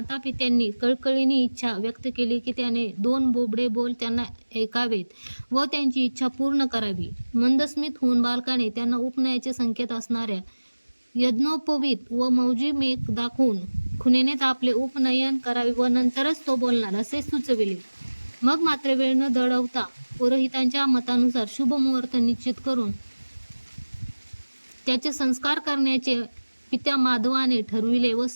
पित्यांनी कळकळीने इच्छा व्यक्त केली की त्याने 2 बोबडे बोल त्यांना ऐकावेत व त्यांची इच्छा पूर्ण करावी. मंदस्मित होऊन बालकाने त्यांना उपनयाचे संकेत असणाऱ्या यज्ञोपवीत व मौजी मेघ दाखवून खुणेनेच आपले उपनयन करावे व नंतरच तो बोलणार असे सुचविले. मग मात्र वेळ न दळवता पुरोहितांच्या मतानुसार शुभ मुहूर्त निश्चित करून त्याचे संस्कार करण्याचे पित्या माधवाने ठरविले व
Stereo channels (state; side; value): inverted; both; correlation -1.00